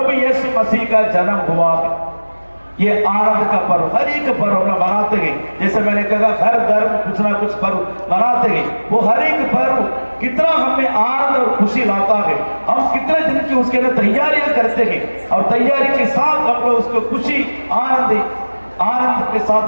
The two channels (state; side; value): inverted; both; correlation -1.00